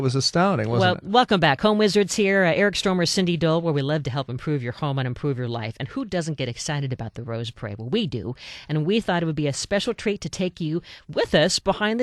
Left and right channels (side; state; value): both; identical; correlation 1.00